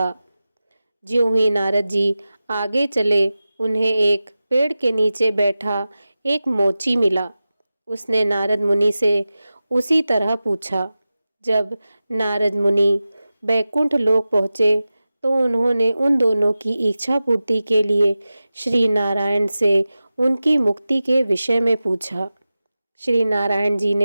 ज्यों ही नारद जी आगे चले, उन्हें एक पेड़ के नीचे बैठा एक मोची मिला। उसने नारद मुनि से उसी तरह पूछा। जब नारद मुनि बैकुंठ लोक पहुँचे तो उन्होंने उन दोनों की इच्छा पूर्ति के लिए श्री नारायण से उनकी मुक्ति के विषय में पूछा। श्री नारायण जी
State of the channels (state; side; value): inverted; both; correlation -0.95